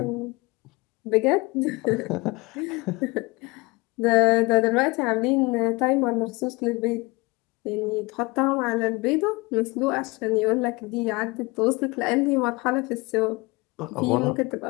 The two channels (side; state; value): right; quieter; 24.7 dB